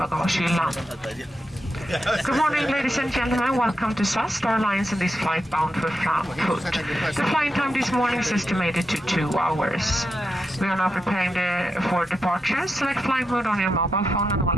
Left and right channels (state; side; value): normal; both; correlation 0.86